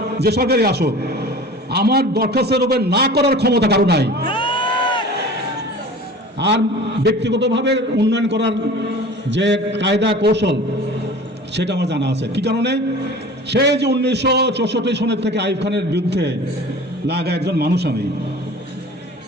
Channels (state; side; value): normal; both; correlation 0.40